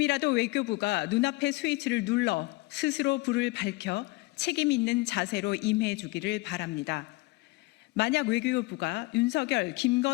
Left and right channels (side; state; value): right; quieter; 23.0 dB